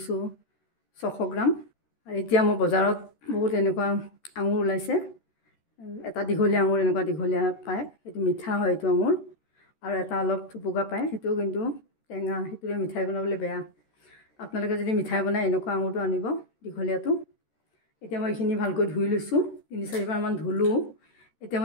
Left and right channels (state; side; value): late; right; 13 ms